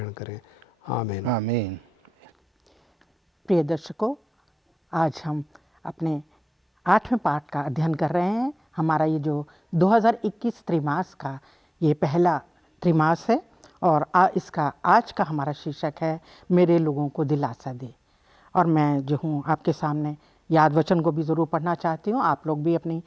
करें। आमीन आमीन। प्रिय दर्शकों, आज हम अपने 8वें पाठ का अध्ययन कर रहे हैं। हमारा ये जो 2021 त्रैमास का ये पहला त्रैमास है और इसका आज का हमारा शीर्षक है मेरे लोगों को दिलासा दे। और मैं जो हूँ आपके सामने याद वचन को भी ज़रूर पढ़ना चाहती हूँ। आप लोग भी अपनी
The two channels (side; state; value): both; normal; correlation 0.97